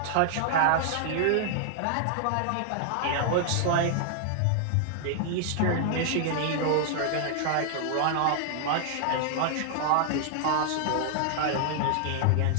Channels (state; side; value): different; both; correlation -0.01